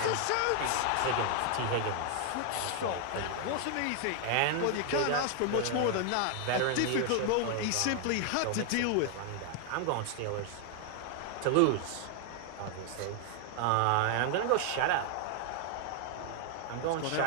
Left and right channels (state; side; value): different; both; correlation 0.00